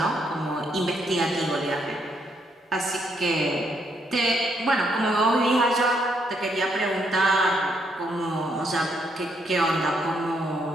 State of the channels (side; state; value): both; normal; correlation 0.74